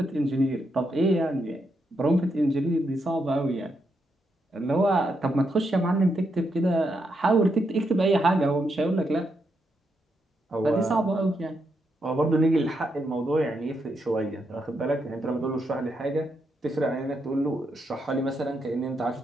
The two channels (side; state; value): both; normal; correlation 0.81